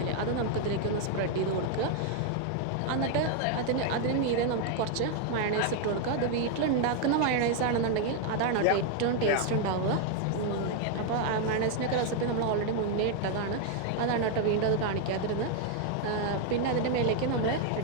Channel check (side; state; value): both; different; correlation 0.00